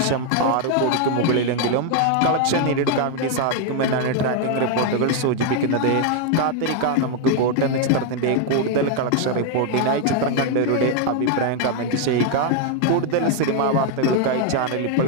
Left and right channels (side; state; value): both; different; correlation 0.00